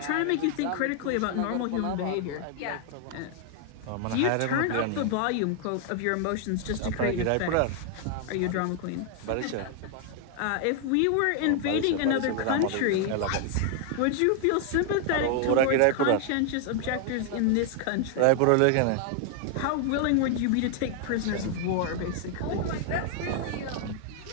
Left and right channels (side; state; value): both; different; correlation 0.00